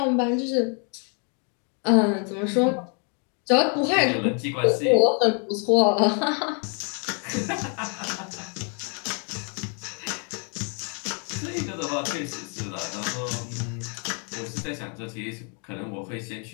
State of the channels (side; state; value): right; quieter; 39.6 dB